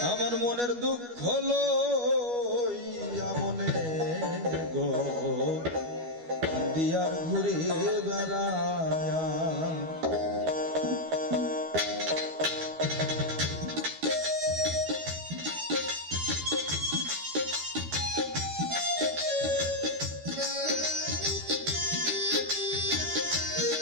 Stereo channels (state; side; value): late; left; 12 ms